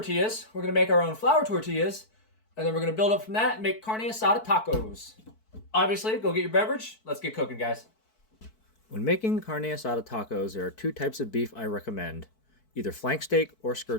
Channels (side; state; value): right; late; 4.6 ms